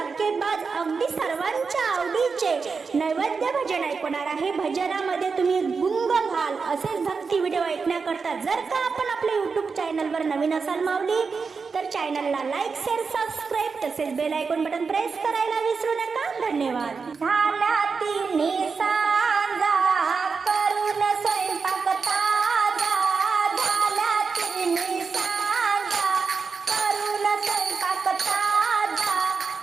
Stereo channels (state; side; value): quieter; left; 5.0 dB